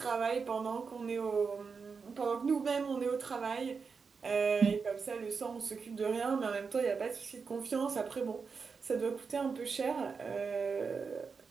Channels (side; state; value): left; quieter; 5.3 dB